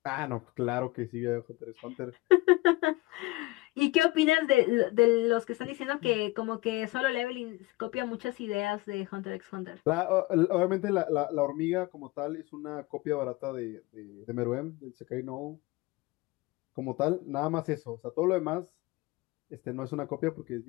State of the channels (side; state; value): right; quieter; 21.0 dB